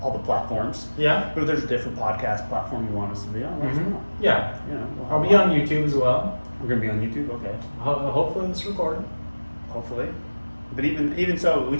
all the platforms. Yeah. But if there's a different podcast platform you want us to be on, let us know. Yeah. We'll I'll have be one. on YouTube as well. We're gonna be on YouTube, okay. Hopefully this recorded. Hopefully. But even so, we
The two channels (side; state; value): both; inverted; correlation -1.00